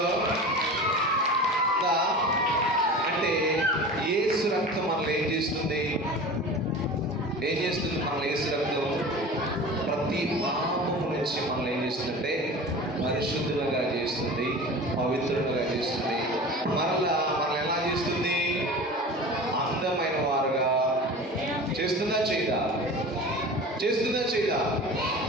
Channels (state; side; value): normal; both; correlation 0.36